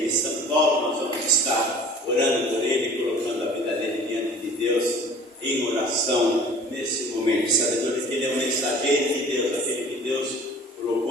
de São Paulo. Nós vamos estar orando por ele, colocando a vida dele diante de Deus em oração nesse momento, sabedor de que ele é um mensageiro de Deus, aquele que Deus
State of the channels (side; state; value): both; normal; correlation 0.46